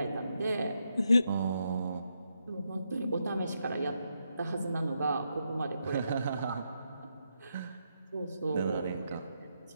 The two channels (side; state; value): both; inverted; correlation -0.81